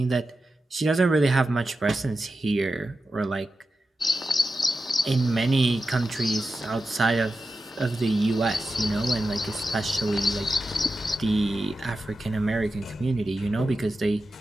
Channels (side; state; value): both; normal; correlation 0.91